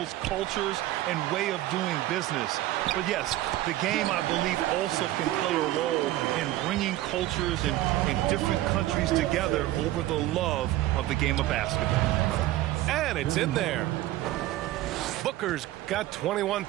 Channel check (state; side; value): quieter; left; 15.5 dB